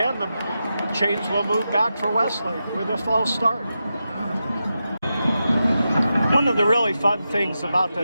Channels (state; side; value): inverted; both; correlation -0.89